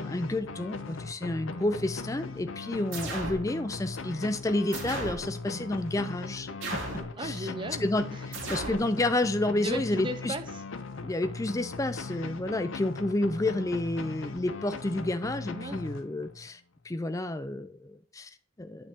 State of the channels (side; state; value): both; normal; correlation 0.70